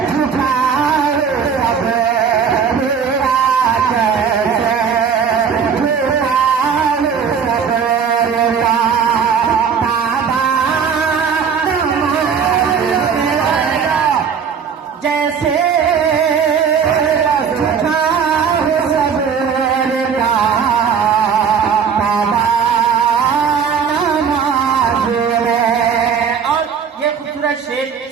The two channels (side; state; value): left; quieter; 6.8 dB